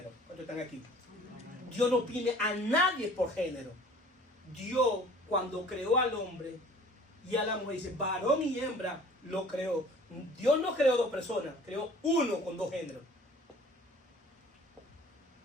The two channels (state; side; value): normal; both; correlation 0.50